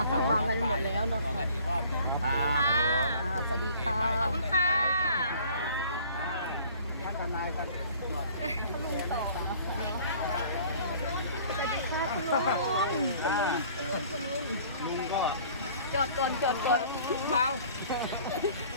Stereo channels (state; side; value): inverted; both; correlation -0.52